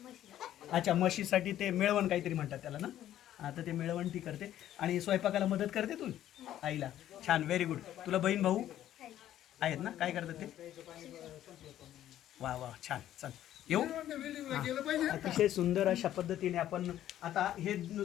अच्छा, म्हशीसाठी. ते मेळवण काहीतरी म्हणतात त्याला ना? आता ते मेळवण ती करते आणि स्वयंपाकाला मदत करते तू आईला. छान, व्हेरी गुड. तुला बहीण भाऊ आहेत ना? काय करतात ते? वा वा, छान. चल येऊ. अतिशय सुंदर अशा पद्धतीने आपण आता हे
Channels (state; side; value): quieter; right; 12.2 dB